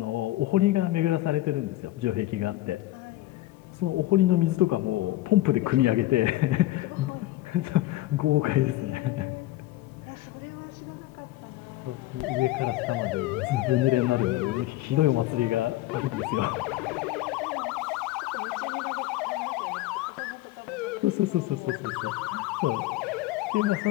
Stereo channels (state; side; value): quieter; right; 16.3 dB